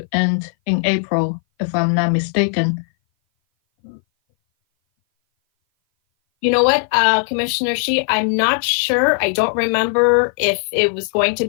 end in April, if I'm not mistaken. You know what, Commissioner Shi, I'm not sure. I don't remember if it was going to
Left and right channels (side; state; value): right; silent; 59 dB below the other